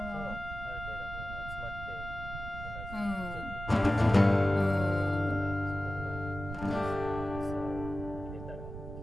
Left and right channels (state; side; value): noise; right; rumble, 9 dB below the sound